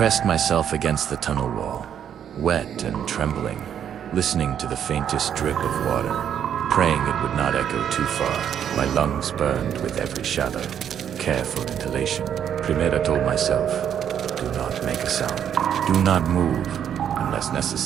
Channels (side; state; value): left; quieter; 9.1 dB